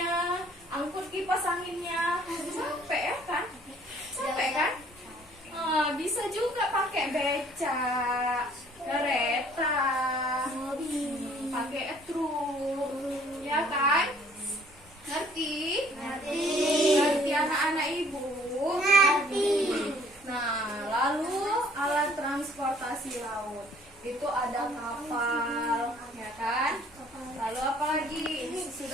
angkut kipas anginnya, capek ya kan? Capek kan? Bisa juga pakai beca, kereta, pakai truk, ya kan? Ngerti? Ngerti anak-anak ibu? Ngerti. Nah, lalu alat transportasi laut. itu ada kapal, ya kan? Lalu apa lagi?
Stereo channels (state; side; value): noise; left; rumble, 29 dB below the sound